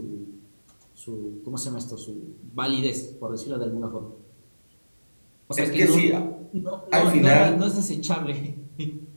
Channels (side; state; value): both; inverted; correlation -1.00